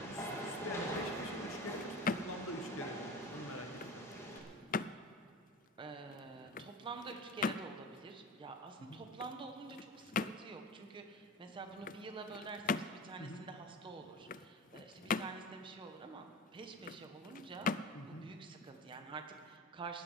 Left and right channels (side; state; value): both; normal; correlation 0.32